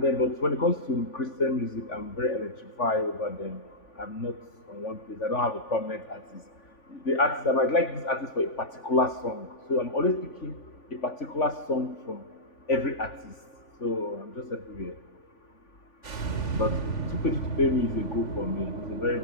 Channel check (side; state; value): right; late; 3.5 ms